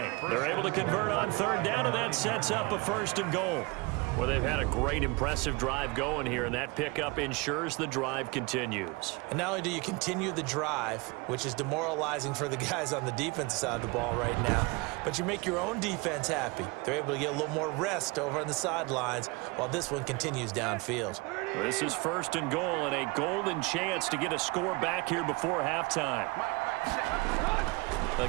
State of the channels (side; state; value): left; quieter; 25.7 dB